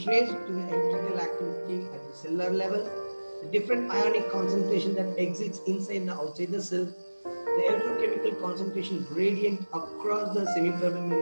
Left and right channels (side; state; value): both; inverted; correlation -1.00